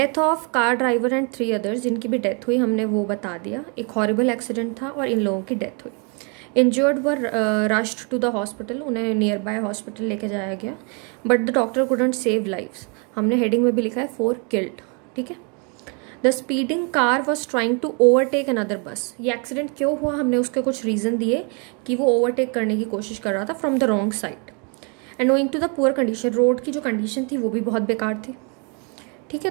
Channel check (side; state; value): left; quieter; 35.8 dB